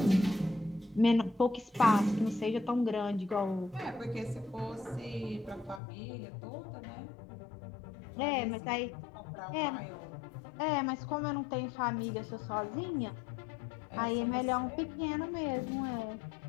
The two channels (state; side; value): drops out; right; at 5.8 s